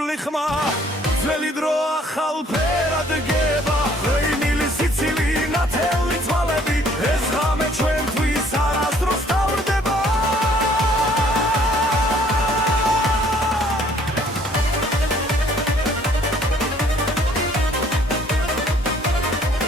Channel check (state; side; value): normal; both; correlation 0.60